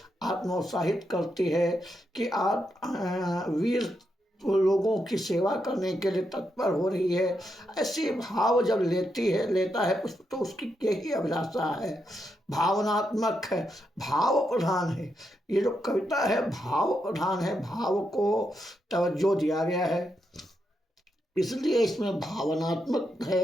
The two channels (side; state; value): both; normal; correlation 0.82